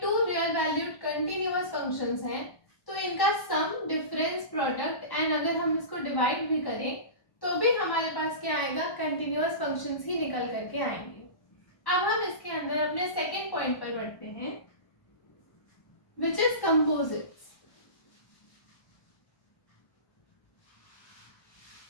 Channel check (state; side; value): late; right; 1.1 ms